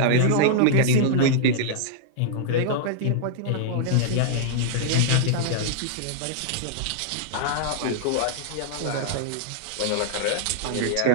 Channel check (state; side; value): different; both; correlation -0.01